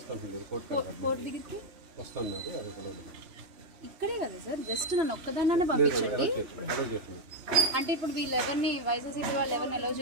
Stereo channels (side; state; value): left; late; 3.0 ms